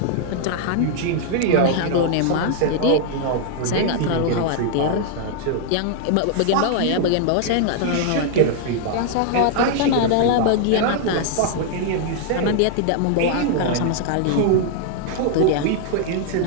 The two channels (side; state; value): both; different; correlation 0.00